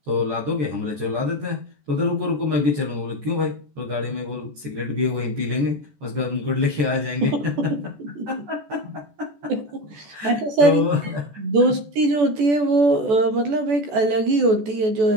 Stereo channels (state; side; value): late; left; 14 ms